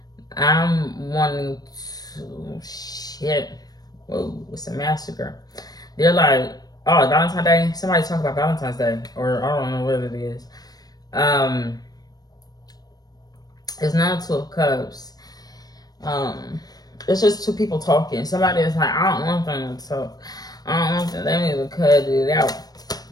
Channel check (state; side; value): late; right; 0.19 ms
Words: I'm wanting to, shit. Whoa, it's a massacre. They're like, oh, Valentine's Day? Somebody talk about Valentine's Day. Or I don't know what it is. It's not Two of Cups. It's just two people talking. Somebody is like, I don't want them to talk. I don't want them. They need to cut it out.